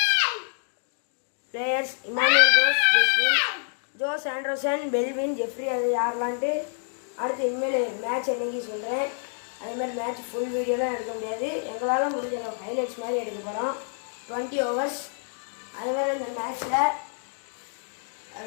players Emmanuel Jose Anderson Belwin Jeffrey அது யாரெல்லாம்ட்டு அடுத்து இனிமேல் மேட்ச் என்னைக்கு சொல்கிறேன். அதேமாதிரி மேட்ச் ஃபுல் வீடியோலாம் எடுக்க முடியாது. எங்களால் முடிஞ்ச ஹைலைட்ஸ் மாதிரி எடுக்க போகிறோம். 20 overs. அதேமாதிரி இந்த மேட்ச்சில்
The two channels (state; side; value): silent; right; digital silence